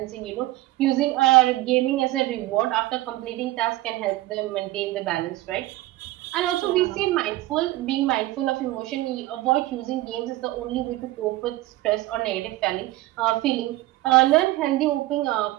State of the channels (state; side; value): quieter; left; 17.6 dB